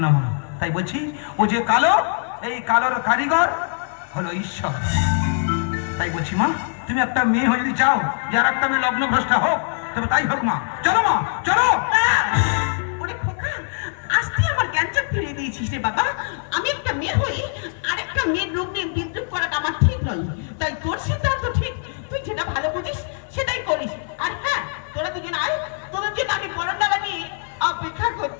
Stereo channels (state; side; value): silent; right; 61 dB below the other